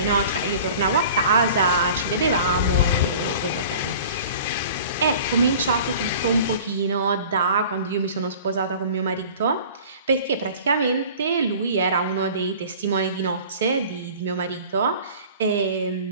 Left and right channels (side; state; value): both; inverted; correlation -0.44